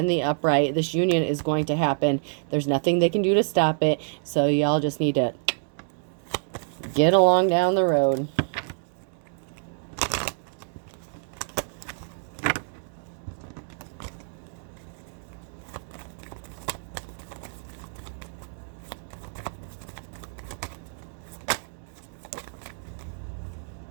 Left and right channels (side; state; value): left; silent; digital silence